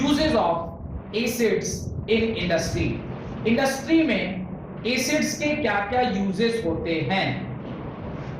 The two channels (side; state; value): both; identical; correlation 1.00